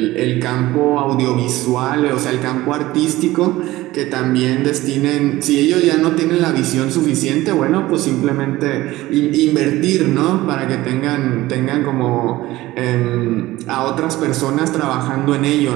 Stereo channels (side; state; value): left; quieter; 17.4 dB